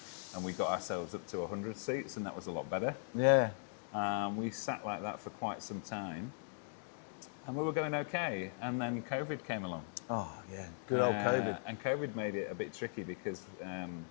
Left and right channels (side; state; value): right; silent; digital silence